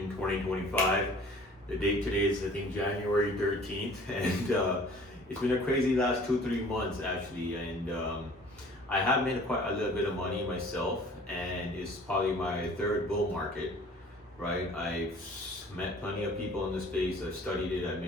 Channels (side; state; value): both; normal; correlation 0.49